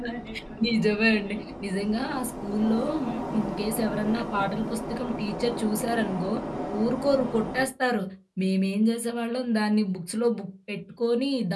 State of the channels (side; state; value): both; identical; correlation 1.00